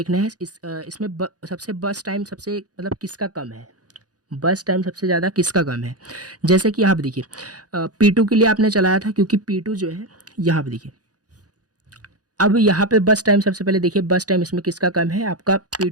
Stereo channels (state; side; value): late; left; 0.68 ms